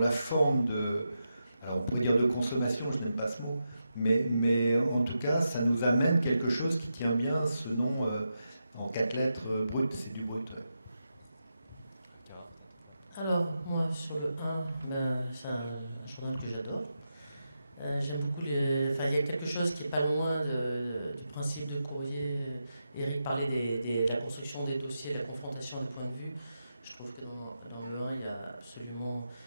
la forme alors on pourrait dire de consommation, je n'aime pas ce mot, mais en tout cas, ça nous amène quelque chose qui tient bien ce nom en 4 lettres, brut, c'est du brut. Ouais. Alors, moi, sur le 1, c'est un journal que j'adore. J'aime beaucoup il y a quelque chose qui n'est pas loin du principe de Courrier. Eric parlait de la construction des dossiers, la confrontation des points de vue. Je trouve que dans le 1, il y a absolument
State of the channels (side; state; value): both; inverted; correlation -0.87